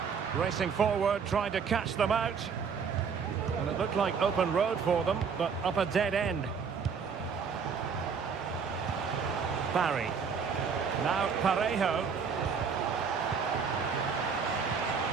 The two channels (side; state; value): left; quieter; 6.1 dB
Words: Racing forward, trying to catch them out. And it looked like open road for them, but up a dead end. Barry. Now Parejo.